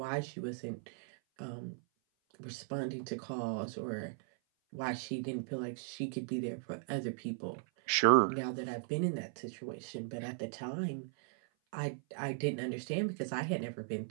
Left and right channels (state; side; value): silent; left; 53 dB below the other